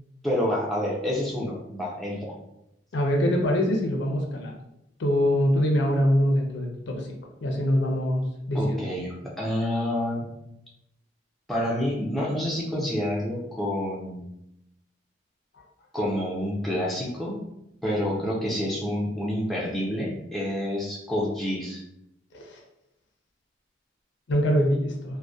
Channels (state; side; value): normal; both; correlation 0.74